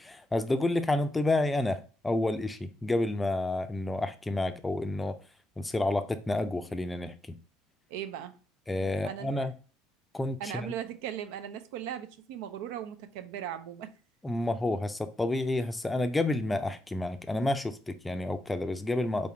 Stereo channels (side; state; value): both; normal; correlation 0.84